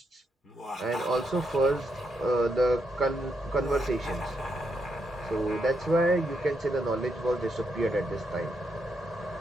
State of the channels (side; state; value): both; normal; correlation 0.80